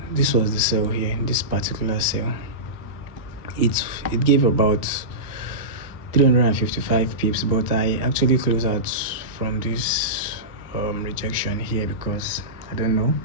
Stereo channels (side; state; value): both; normal; correlation -0.19